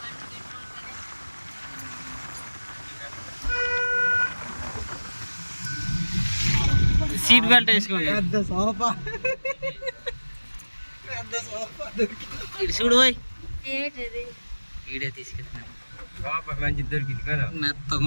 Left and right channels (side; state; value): both; inverted; correlation -1.00